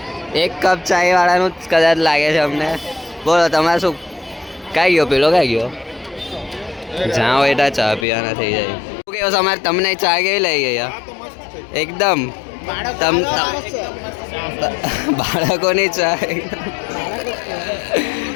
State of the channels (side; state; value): right; drops out; at 8.1 s